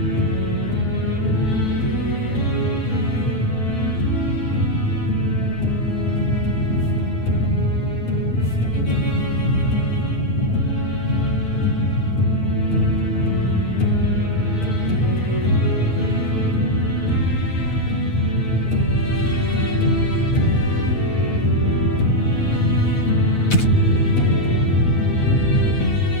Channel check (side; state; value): right; late; 9.1 ms